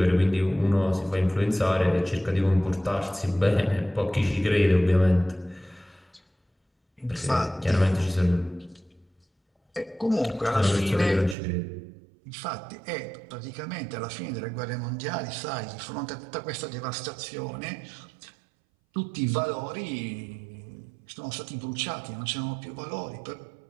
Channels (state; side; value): drops out; left; at 11.4 s